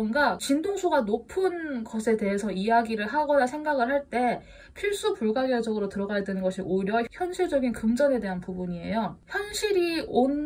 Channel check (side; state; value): both; identical; correlation 1.00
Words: 진동수가 높은 것에 대해서 이야기를 하거나 생각을 할 때 필수 불가결적으로 들어가야 되는 것이 오히려 현실적인 금전에 대한 부분이에요. 현실이